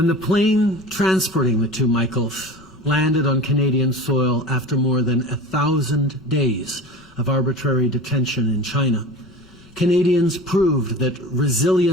the plane transporting the two Michaels landed on Canadian soil after more than 1,000 days of arbitrary detention in China, Canadians proved that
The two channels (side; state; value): left; noise; rumble, 27 dB below the sound